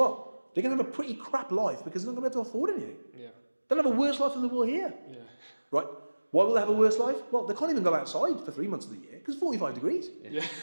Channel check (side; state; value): both; inverted; correlation -1.00